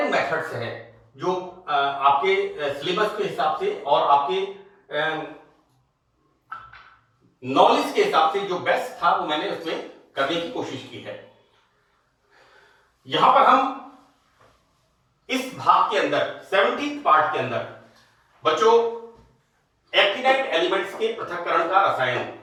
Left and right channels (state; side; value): identical; both; correlation 1.00